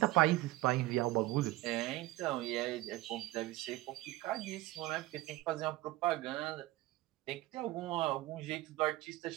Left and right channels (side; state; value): left; quieter; 17.8 dB